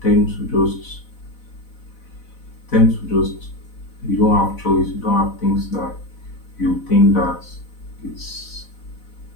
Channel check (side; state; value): right; late; 4.0 ms